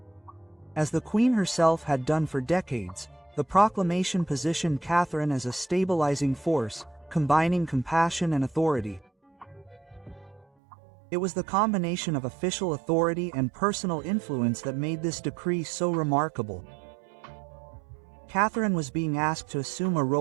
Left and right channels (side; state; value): left; drops out; at 10.5 s